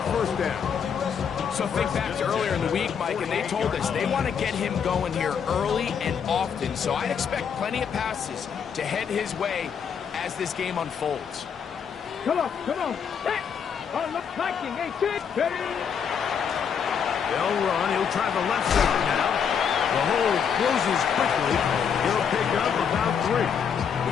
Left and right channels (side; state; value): right; quieter; 7.2 dB